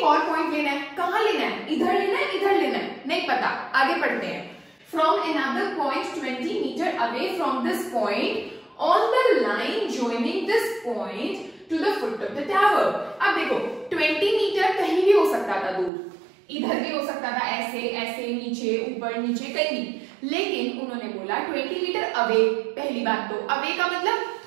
और पॉइंट लेना है, कहां लेना है, इधर लेना है, इधर लेना है, नहीं पता, आगे पढ़ते हैं। From another point 20 metre away from this point on the line joining this point to the foot of the tower. अब देखो 20 मीटर कहीं भी हो सकता था दूर, इधर भी हो सकता था, ऐसे ऐसे, नीचे ऊपर नीचे, कहीं भी, लेकिन उन्होंने बोला 20 मीटर अवे। पहली बात तो अवे का मतलब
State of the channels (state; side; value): drops out; left; at 15.9 s